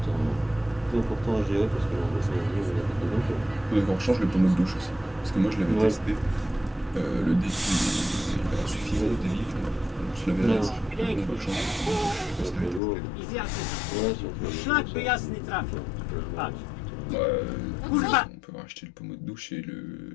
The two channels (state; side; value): drops out; right; at 12.8 s